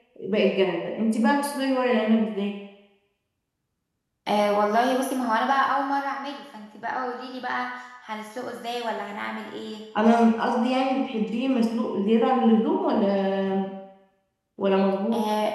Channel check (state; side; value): identical; both; correlation 1.00